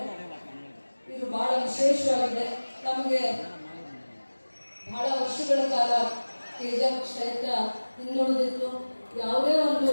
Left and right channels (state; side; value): inverted; both; correlation -1.00